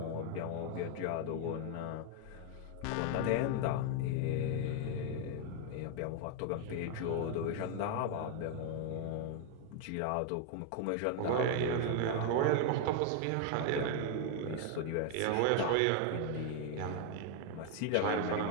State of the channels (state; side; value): different; both; correlation 0.01